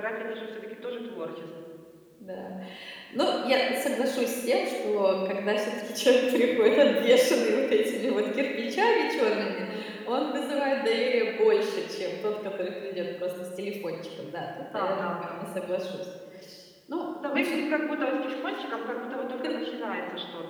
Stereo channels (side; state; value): both; identical; correlation 1.00